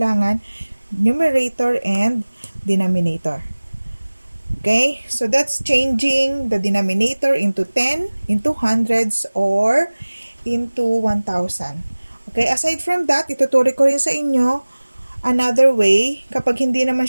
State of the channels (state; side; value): inverted; both; correlation -1.00